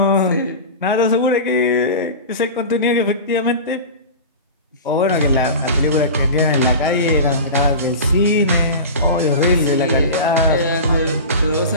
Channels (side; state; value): both; inverted; correlation -0.30